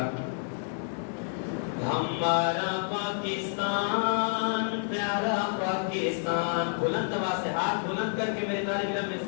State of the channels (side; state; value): right; silent; digital silence